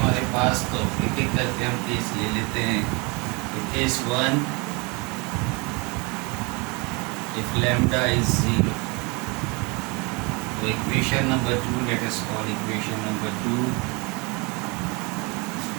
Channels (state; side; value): quieter; left; 28.7 dB